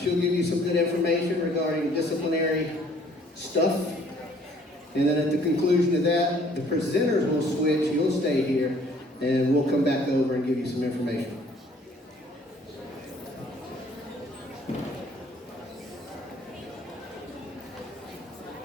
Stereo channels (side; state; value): both; normal; correlation 0.58